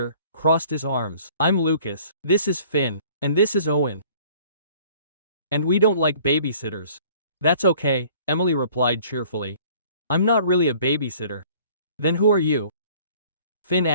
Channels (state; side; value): inverted; both; correlation -0.53